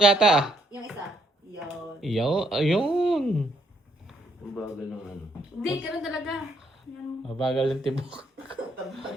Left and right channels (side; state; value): both; normal; correlation 0.71